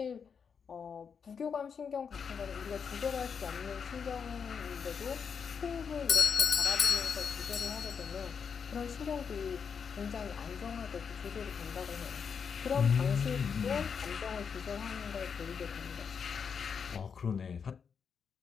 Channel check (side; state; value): right; quieter; 6.4 dB